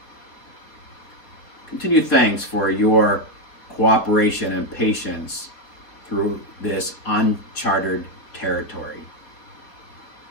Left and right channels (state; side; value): late; right; 4.4 ms